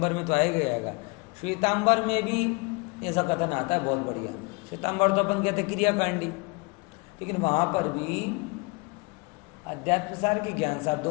में तो आएगा, श्वेतांबर में भी ऐसा कथन आता है, बहुत बढ़िया। श्वेतांबर तो अपन कहते क्रियाकांडी, लेकिन वहां पर भी अध्यात्म सार के ज्ञान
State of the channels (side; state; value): right; quieter; 28.5 dB